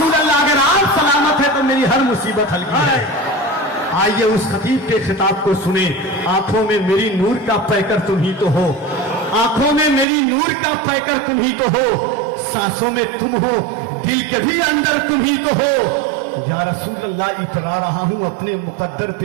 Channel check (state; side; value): drops out; left; at 10.1 s